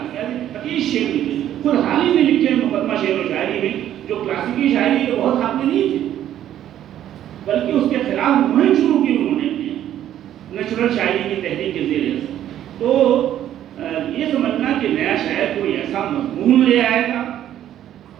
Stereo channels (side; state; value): left; quieter; 11.5 dB